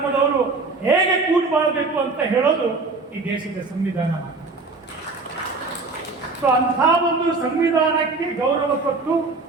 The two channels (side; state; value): left; quieter; 3.8 dB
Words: ಹೇಗೆ ಕೂಡಿ ಬಾಳಬೇಕು ಅಂತ ಹೇಳೋದು ಈ ದೇಶದ ಸಂವಿಧಾನ. ಸೊ ಅಂಥ ಒಂದು ಸಂವಿಧಾನಕ್ಕೆ ಗೌರವ ಕೊಟ್ಟು